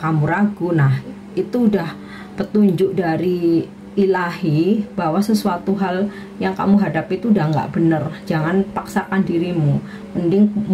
kamu ragu. Nah itu udah petunjuk dari ilahi bahwa sesuatu hal yang kamu hadapi itu udah nggak bener. Jangan paksakan dirimu, mending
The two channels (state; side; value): identical; both; correlation 1.00